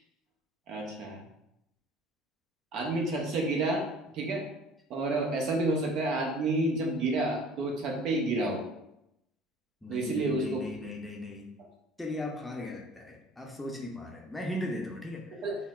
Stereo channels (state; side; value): normal; both; correlation 0.49